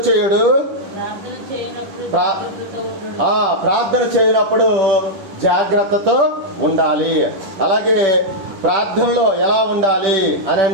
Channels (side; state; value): left; late; 10 ms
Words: చేయుడు. ప్రార్థన చేయనప్పుడు జాగ్రత్తతో ఉండాలి. అలాగే ప్రార్థనలో ఎలా ఉండాలి అని